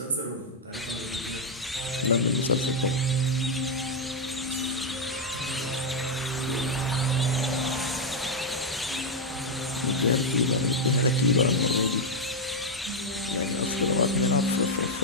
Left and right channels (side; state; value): both; normal; correlation 0.01